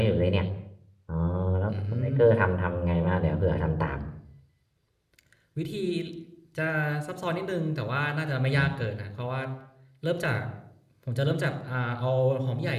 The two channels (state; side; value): identical; both; correlation 1.00